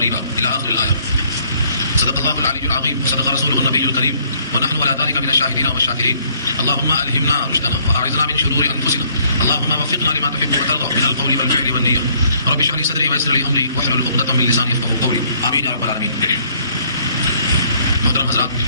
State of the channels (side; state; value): both; inverted; correlation -0.63